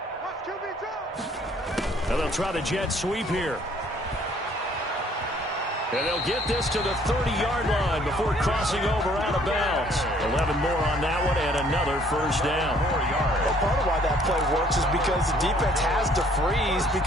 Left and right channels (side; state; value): both; normal; correlation 0.60